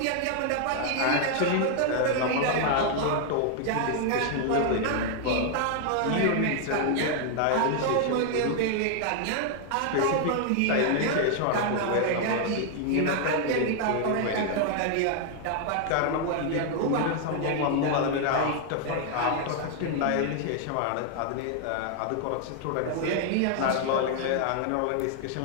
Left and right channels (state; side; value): different; both; correlation 0.00